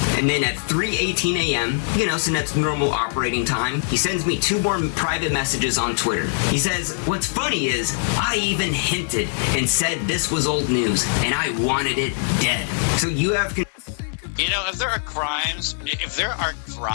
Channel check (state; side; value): silent; right; digital silence